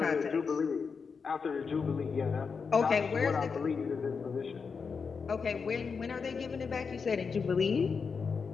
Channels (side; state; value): right; quieter; 5.4 dB